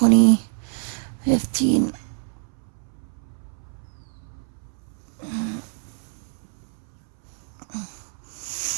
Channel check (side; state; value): left; silent; 61 dB below the other